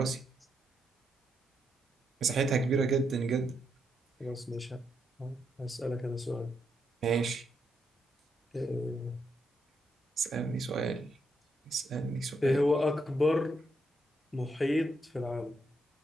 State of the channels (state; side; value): normal; both; correlation 0.79